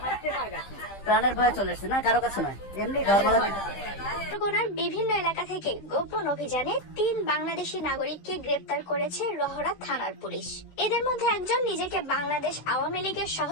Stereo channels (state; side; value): late; right; 15 ms